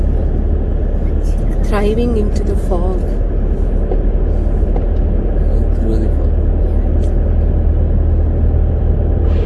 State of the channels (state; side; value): identical; both; correlation 1.00